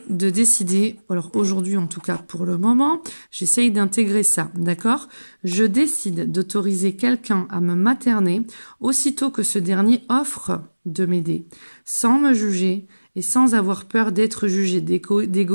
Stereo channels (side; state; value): both; inverted; correlation -1.00